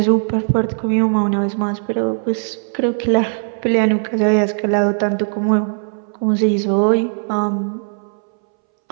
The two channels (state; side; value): silent; left; 65 dB below the other